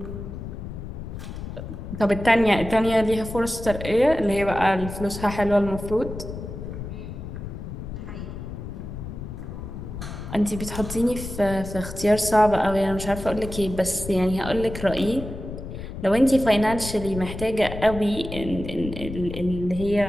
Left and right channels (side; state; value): left; noise; rumble, 9 dB below the sound